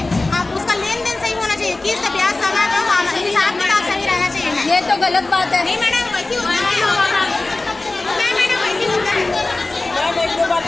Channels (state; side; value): quieter; right; 3.1 dB